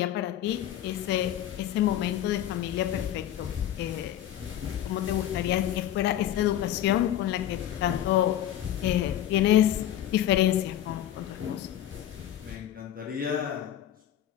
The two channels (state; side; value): quieter; right; 11.7 dB